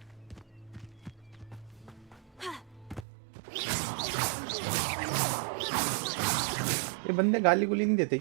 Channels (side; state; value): left; drops out; at 3.1 s